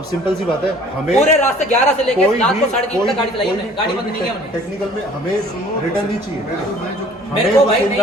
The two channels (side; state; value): both; normal; correlation 0.52